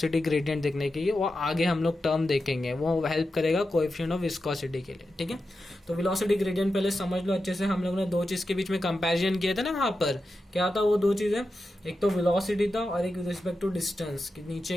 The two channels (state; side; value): normal; both; correlation 0.90